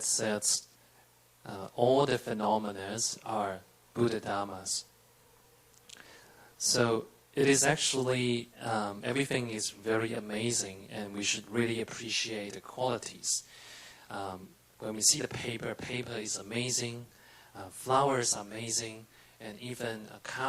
says all the phenomena are Buddha Dhammas. So it is actually, everything is very amazing, and we should really appreciate the qualities. When we see the paper is amazing, flowers are amazing, and even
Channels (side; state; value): both; identical; correlation 1.00